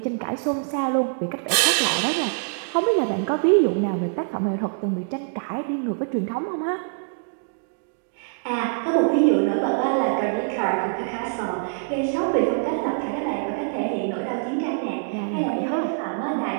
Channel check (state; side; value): silent; left; digital silence